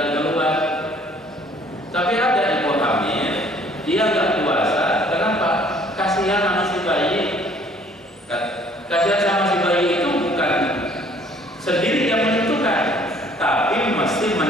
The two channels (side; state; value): both; normal; correlation 0.58